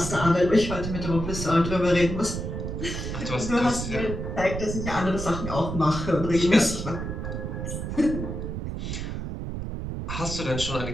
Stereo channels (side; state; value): right; noise; rumble, 5 dB below the sound